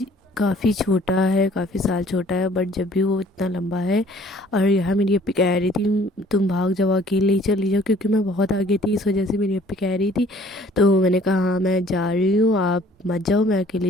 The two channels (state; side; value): normal; both; correlation 0.56